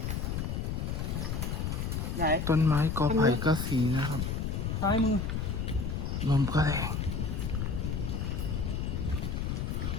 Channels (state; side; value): noise; left; rumble, 1 dB below the sound